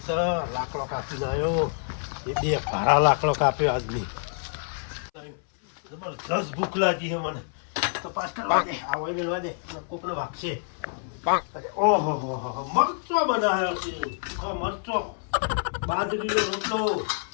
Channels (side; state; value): right; silent; 60 dB below the other